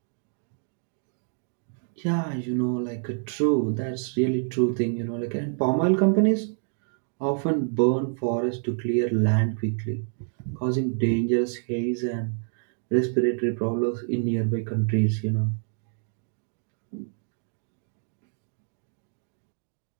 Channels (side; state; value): left; silent; 60 dB below the other